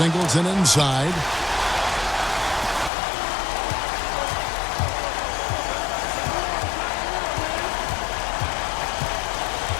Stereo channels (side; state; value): right; drops out; at 2.9 s